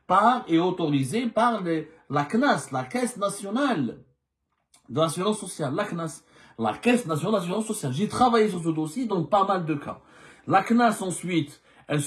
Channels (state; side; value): identical; both; correlation 1.00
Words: et autorisée par la CNAS, la Caisse nationale de l'assurance sociale, la CNAS, la Caisse nationale d'assurance sociale. J'ai travaillé sur ce dossier dans pas mal de cas. La CNAS ensuite, elle